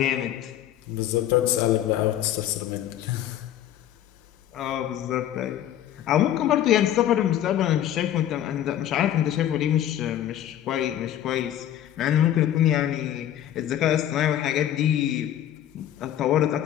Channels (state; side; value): quieter; right; 11.5 dB